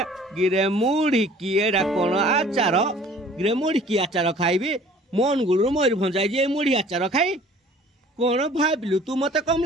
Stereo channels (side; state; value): both; normal; correlation 0.50